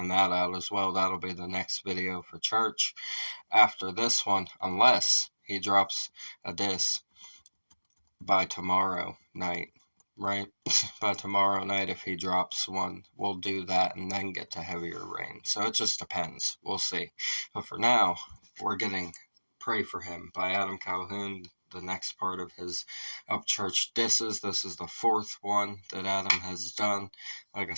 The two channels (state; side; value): inverted; both; correlation -1.00